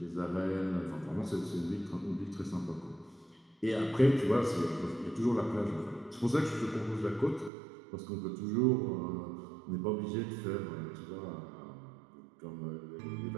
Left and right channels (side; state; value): left; drops out; at 7.5 s